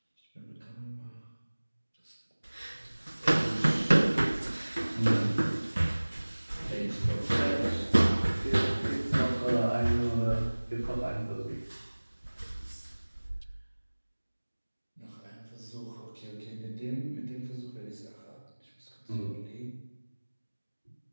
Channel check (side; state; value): both; inverted; correlation -1.00